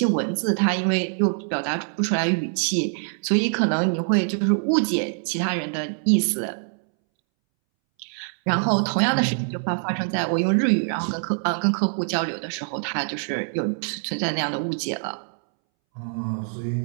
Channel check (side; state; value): left; silent; 62 dB below the other